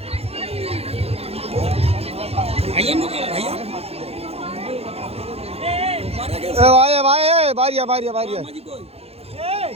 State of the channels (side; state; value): left; late; 0.29 ms